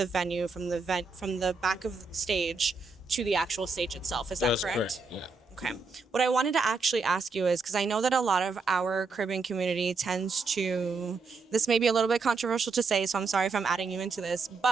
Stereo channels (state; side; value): quieter; left; 4.3 dB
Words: venue, from the back of the stage to the actual stage itself. Is that That's correct? Yeah. Okay. What I wanted to actually ask you is, because I know that a lot of our Caribbean community tends to, this may be a little bit controversial to say, so I'm sorry if I'm adding you into this,